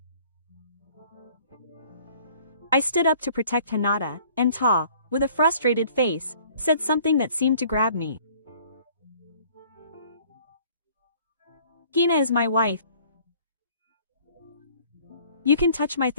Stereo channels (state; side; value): inverted; both; correlation -0.54